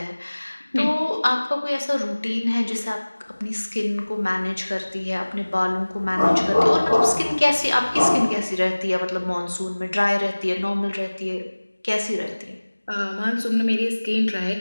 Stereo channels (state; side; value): inverted; both; correlation -1.00